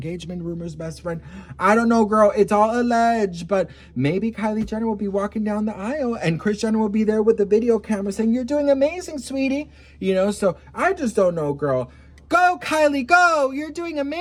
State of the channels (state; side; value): identical; both; correlation 1.00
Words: rumors, best friend. I don't know, girl. It's all alleged, but maybe Kylie Jenner will be walking down the aisle and Kris Jenner will be there with the video camera saying, "You're doing amazing, sweetie." So I just don't know, girl. Go, Kylie, go! You're doing